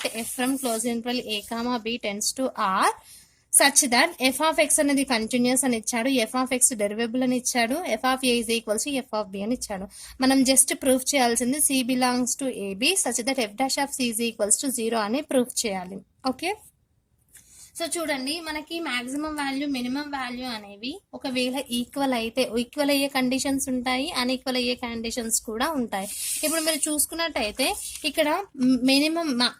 F from close interval A comma B tends to R such that F of X అనేది కంటిన్యూస్ అని ఇచ్చాడు, ఎఫ్ ఆఫ్ ఎక్స్ డెరివేబుల్ అని ఇచ్చాడు, F of A is equals to F of B అని ఇచ్చాడు. మనం జస్ట్ ప్రూఫ్ చేయాల్సింది C belongs to A B such that F dash of C is equals to 0 అని ప్రూఫ్ చేయాలి. ఓకే, సో చూడండి, మనకి మాక్సిమం వాల్యూ మినిమం వాల్యూ అనేవి ఒకవేళ ఈక్వల్ అయితే ఈక్వల్ అయ్యే కండిషన్స్ ఉంటాయి, అన్ఈక్వల్ అయ్యే కండిషన్స్ కూడా ఉంటాయి. ఇప్పుడు మీరు చూసుకున్నట్టయితే ఇక్కడ మినిమం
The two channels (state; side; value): identical; both; correlation 1.00